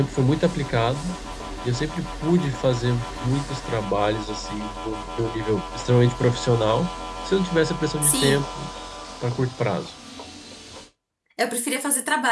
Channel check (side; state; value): both; identical; correlation 1.00